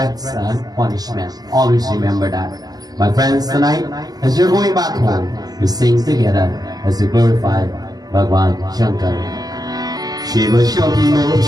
and punishment. Always remember that. My friends, tonight, as you're going back home, we sing together as we glorify Bhagwan Shankar. Shiva Shambho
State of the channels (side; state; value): left; late; 0.19 ms